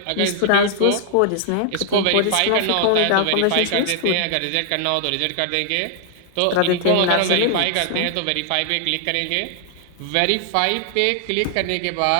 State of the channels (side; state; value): both; different; correlation 0.00